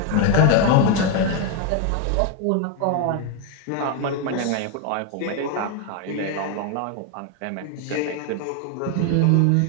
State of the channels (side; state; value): both; different; correlation 0.01